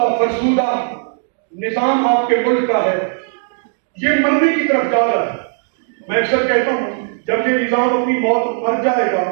فرسودہ نظام آپ کے ملک کا ہے، یہ مرنے کی طرف جا رہا ہے. میں اکثر کہتا ہوں جب یہ نظام اپنی موت مر جائے گا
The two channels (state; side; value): silent; left; 68 dB below the other